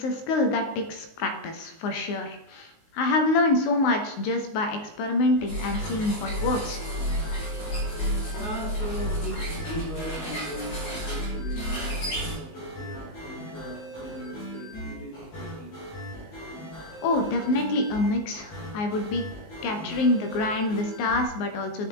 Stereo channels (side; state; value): right; late; 19 ms